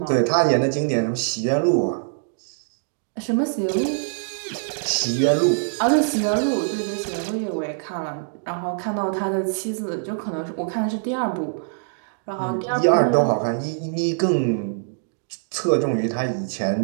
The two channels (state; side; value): silent; left; digital silence